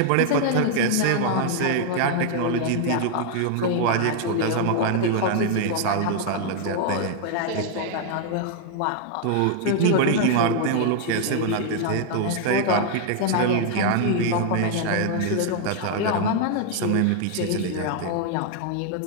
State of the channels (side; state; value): both; different; correlation 0.00